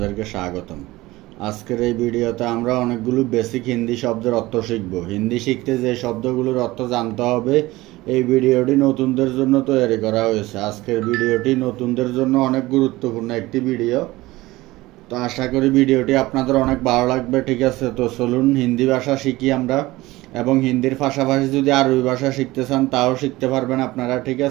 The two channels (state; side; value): quieter; left; 19.0 dB